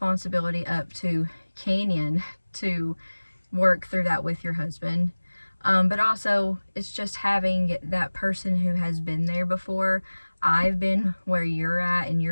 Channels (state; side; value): inverted; both; correlation -1.00